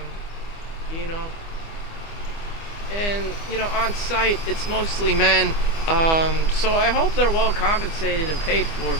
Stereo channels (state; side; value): late; right; 25 ms